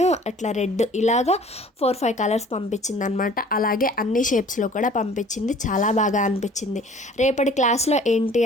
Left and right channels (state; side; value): normal; both; correlation 0.51